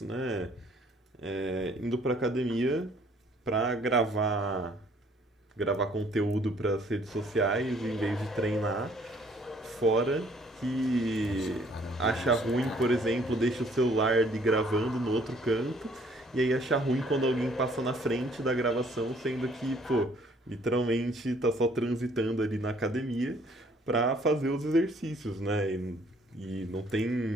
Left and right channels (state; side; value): normal; both; correlation 0.61